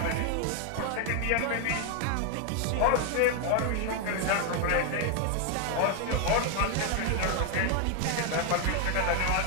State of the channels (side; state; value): both; different; correlation 0.00